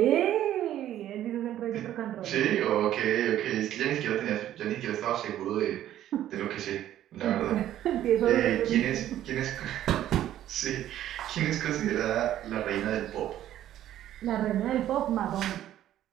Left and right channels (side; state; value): left; quieter; 12.2 dB